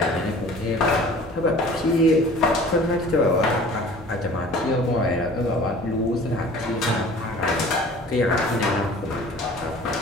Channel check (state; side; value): normal; both; correlation 0.46